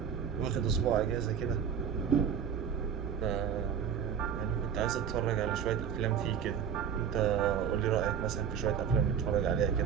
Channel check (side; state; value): left; quieter; 7.9 dB